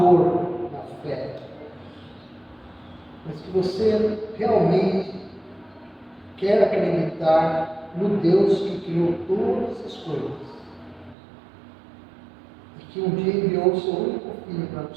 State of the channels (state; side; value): drops out; left; at 11.2 s